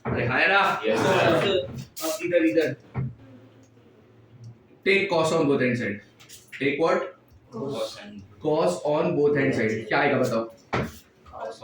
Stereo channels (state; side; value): identical; both; correlation 1.00